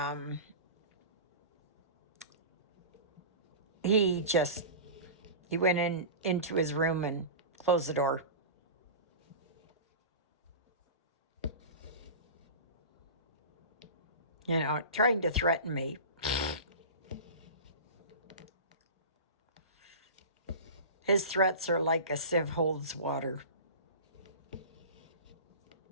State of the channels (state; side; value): inverted; both; correlation -0.32